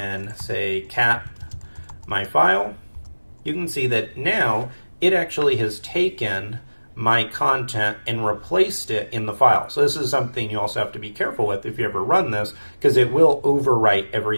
say cat my file, you can see that now it actually has taken my content and replaced it in the file. So this is something you also have to be careful with if you ever run this, because it will overwrite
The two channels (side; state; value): both; inverted; correlation -1.00